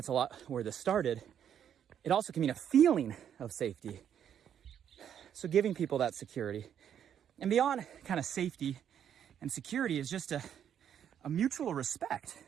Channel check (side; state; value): left; quieter; 9.2 dB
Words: a lot where this started. It also can mean a feeling of safety. So giving people that security. And beyond kind of safety and security is just a mutual respect.